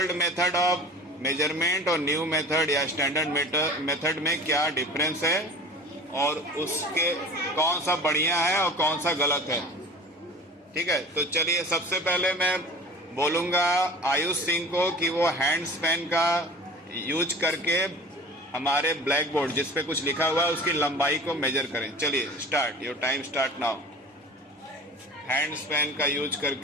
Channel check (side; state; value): both; normal; correlation 0.40